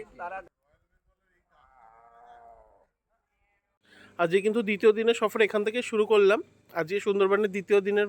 তারা। আজকে কিন্তু দ্বিতীয় দিনের সফর এখান থেকে শুরু করলাম। আজকে সুন্দরবনের দ্বিতীয় দিনের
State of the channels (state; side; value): identical; both; correlation 1.00